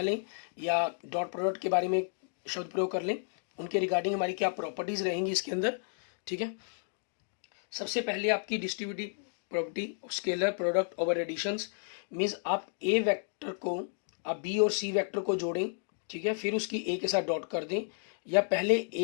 लें या डॉट प्रोडक्ट के बारे में शब्द प्रयोग कर लें, उनके रिगार्डिंग हमारी क्या प्रॉपर्टीज रहेंगी इसके अंदर, ठीक है। सबसे पहले आपकी distributive property scalar product over additions, means आप ए वेक्टर को आप बी और सी वेक्टर को जोड़ें, ठीक है, फिर उसकी ए के साथ डॉट कर दें, या पहले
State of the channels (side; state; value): right; silent; digital silence